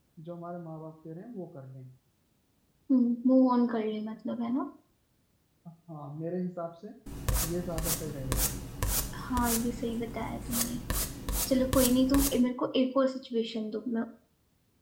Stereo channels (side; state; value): both; identical; correlation 1.00